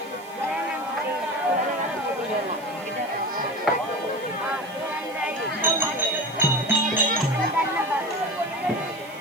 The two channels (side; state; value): right; noise; hiss, 22 dB below the sound